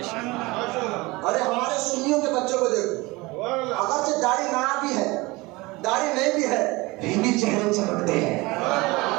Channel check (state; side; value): quieter; left; 22.6 dB